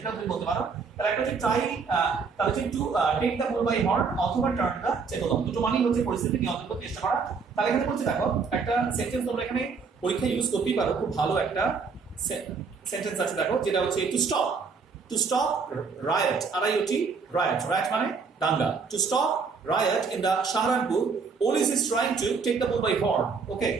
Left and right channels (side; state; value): left; quieter; 5.2 dB